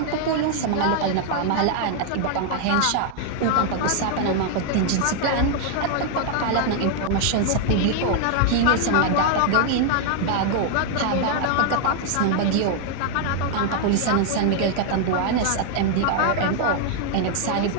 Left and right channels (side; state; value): both; different; correlation 0.00